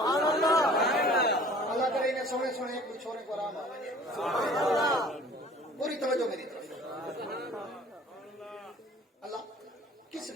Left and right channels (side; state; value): both; normal; correlation 0.49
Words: अल्लाह करे इन्हें सोने सोने एक छोरे को आराम आए, पूरी तवज्जो मेरी तरफ। अल्लाह किस